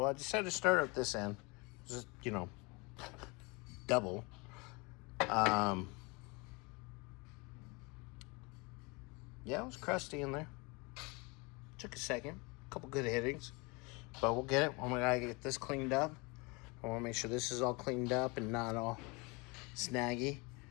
I decided to start up this end. Just, double. Yeah, it was crusty in there. Took a second. A couple good hittings. But we'll get it when we gotta get this cleaned up. I want to make sure this is all cleaned up and not all snaggy.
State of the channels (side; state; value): right; quieter; 27.8 dB